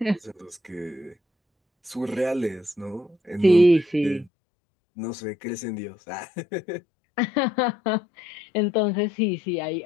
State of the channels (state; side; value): drops out; right; at 4.3 s